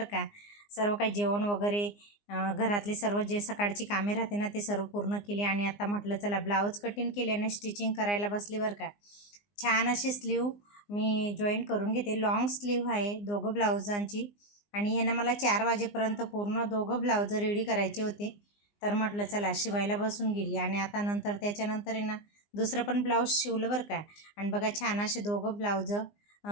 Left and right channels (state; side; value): late; right; 19 ms